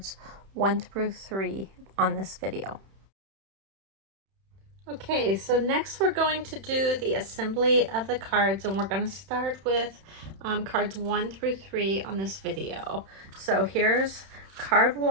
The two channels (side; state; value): left; late; 31 ms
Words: 1 through 3 on this video. Okay, so next we're going to do the assembly of the cards, and we're going to start with cards 1 through 3 on this video. So here's card